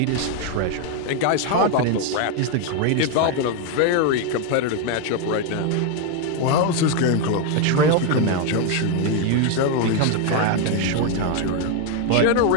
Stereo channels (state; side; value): different; both; correlation 0.01